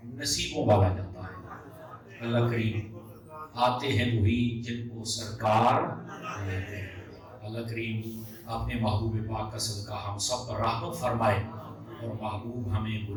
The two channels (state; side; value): identical; both; correlation 1.00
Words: نصیبوں والا جاتا ہے۔ اللہ کریم آتے ہیں وہی جن کو سرکار بلاتے ہیں۔ اللہ کریم اپنے محبوب پاک کا صدقہ ہم سب پر رحمت فرمائے، اور محبوب ہمیں